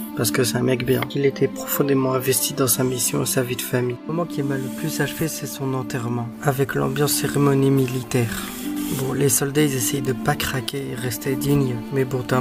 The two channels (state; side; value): identical; both; correlation 1.00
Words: Parce que c'est un mec bien. Il était profondément investi dans sa mission et sa vie de famille. Le moment qui m'a le plus achevé, c'est son enterrement, avec l'ambiance cérémonie militaire. Bon, les soldats, ils essayent de pas craquer et rester dignes. Mais bon, t'as